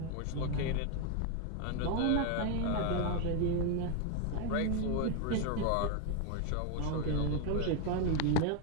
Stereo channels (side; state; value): both; different; correlation 0.01